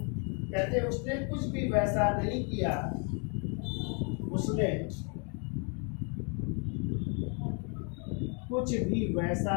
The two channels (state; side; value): quieter; right; 37.9 dB